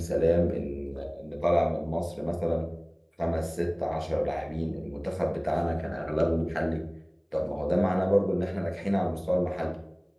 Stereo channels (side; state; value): both; identical; correlation 1.00